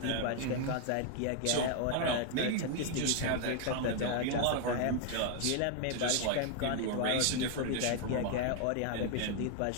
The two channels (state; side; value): different; both; correlation 0.00